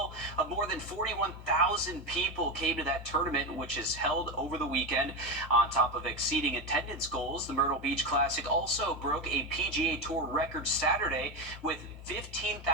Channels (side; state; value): both; normal; correlation 0.15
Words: of more than 41,000 people came to that tournament, which is held over the weekend. On top of exceeding attendance goals, the Myrtle Beach Classic also broke a PGA Tour record Saturday with